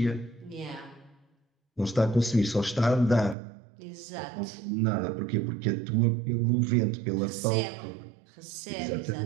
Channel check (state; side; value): drops out; left; at 3.4 s